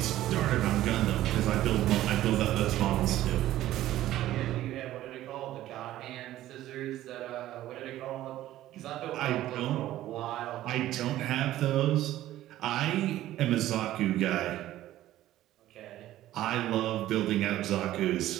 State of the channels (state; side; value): quieter; left; 14.2 dB